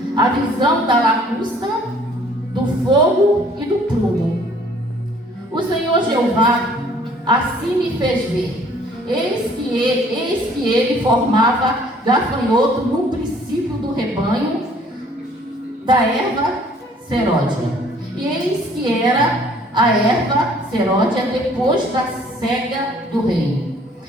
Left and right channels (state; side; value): normal; both; correlation 0.57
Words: a visão da lacusta, do fogo e do prumo. O Senhor Jeová assim me fez ver. Eis que ele formava gafanhoto no princípio do rebanho da erva seródia. E eis que era a erva seródia depois da cega do rei.